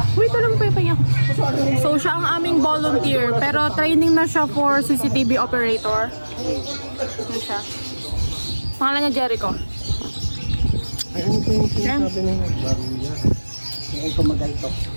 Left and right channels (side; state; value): both; inverted; correlation -1.00